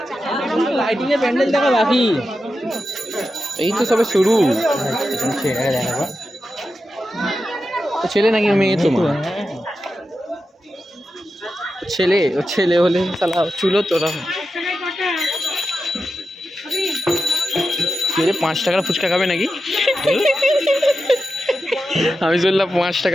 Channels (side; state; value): both; normal; correlation 0.90